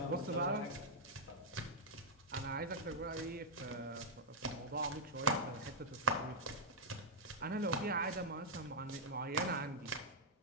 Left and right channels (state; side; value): normal; both; correlation -0.06